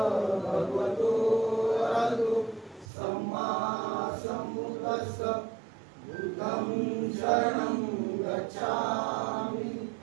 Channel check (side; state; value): left; drops out; at 2.9 s